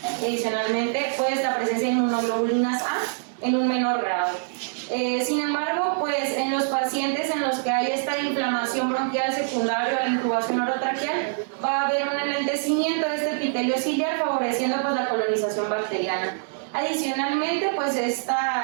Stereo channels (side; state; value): left; silent; digital silence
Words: Adicionalmente, pues la presencia de inmunoglobulinas A en un menor grado. Sin embargo, pues en los pacientes en los que hay esta inflamación bronquial secundaria a la intubación orotraqueal, va a haber un enlentecimiento de este epitelio ciliar, favoreciendo pues la colonización bacteriana. Adicionalmente, pues